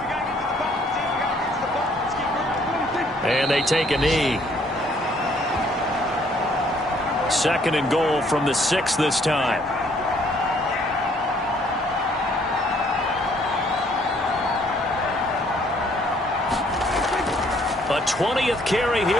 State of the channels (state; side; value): normal; both; correlation 0.63